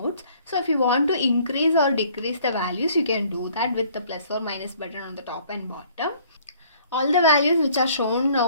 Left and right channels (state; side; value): inverted; both; correlation -0.58